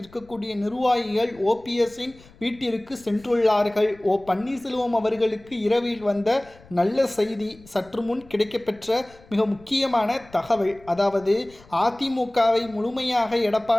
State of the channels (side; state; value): left; noise; rumble, 25 dB below the sound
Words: நிர்வாகிகள் ஓபிஎஸ்ஸின் வீட்டிற்கு சென்றுள்ளார்கள். பன்னீர்செல்வம் அவர்களுக்கு இரவில் வந்த நல்ல செய்தி. சற்று முன் கிடைக்கப்பெற்ற மிக முக்கியமான தகவல். அதாவது அதிமுகவை முழுமையாக